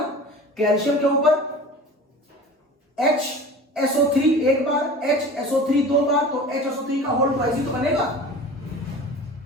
कैल्शियम के ऊपर HSO3 एक बार, HSO3 दो बार, तो HSO3 का होल ट्वाइस ही तो बनेगा।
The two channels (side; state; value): both; normal; correlation 0.38